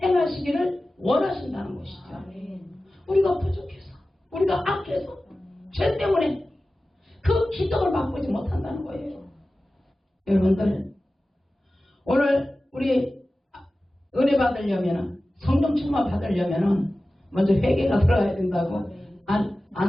행하시기를 원하신다는 것이죠. 우리가 부족해서 우리가 악해서 죄 때문에 그 기적을 맛보지 못한다는 거예요. 여러분들 오늘 우리 은혜 받으려면 성령 충만 받으려면 먼저 회개가 들어가야 된다고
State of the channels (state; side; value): normal; both; correlation 0.95